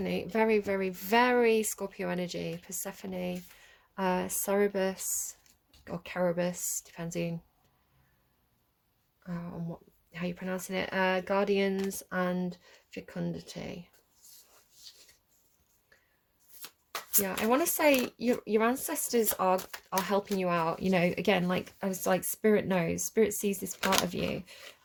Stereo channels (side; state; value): both; identical; correlation 1.00